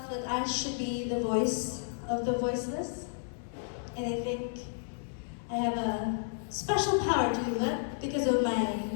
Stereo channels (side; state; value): right; silent; 56 dB below the other